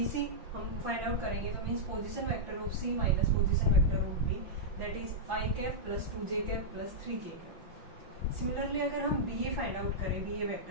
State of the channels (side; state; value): left; late; 5.9 ms